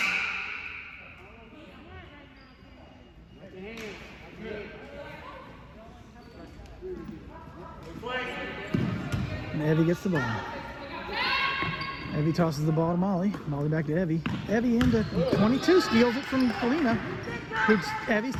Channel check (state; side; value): identical; both; correlation 1.00